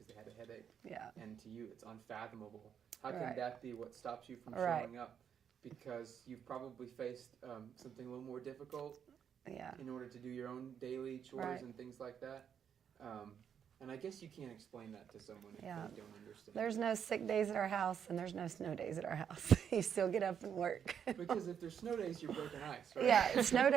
they had a headache, Yeah. and to you, it's unfathomable. How can Right. that be what stops you from Right. showing up? Because you've probably faced something a little more difficult Yeah. in order to do your own daily chores Right. and things like that. And I guess you can't explain that to someone if Yeah. they don't understand. There's no sick days at our house, and there's no snow days at our house. You still get up and work. Because if there's snow days, you're breaking ice, right? Yeah, snow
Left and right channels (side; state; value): left; quieter; 8.1 dB